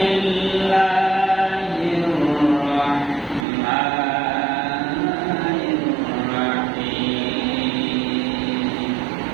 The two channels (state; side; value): drops out; left; at 3.5 s